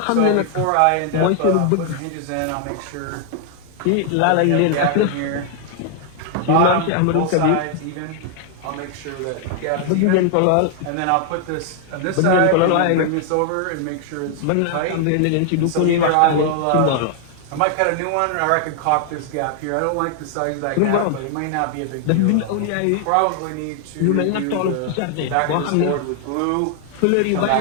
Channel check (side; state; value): both; different; correlation 0.00